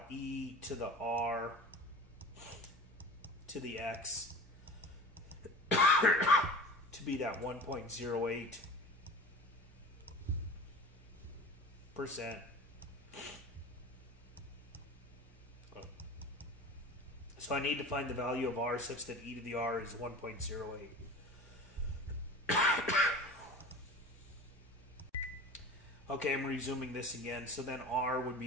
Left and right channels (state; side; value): normal; both; correlation 0.36